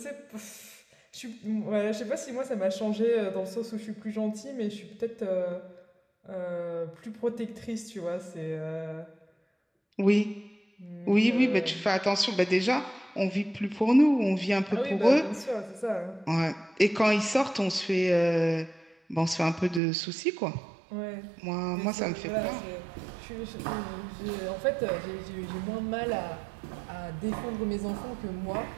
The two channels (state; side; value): drops out; left; at 19.8 s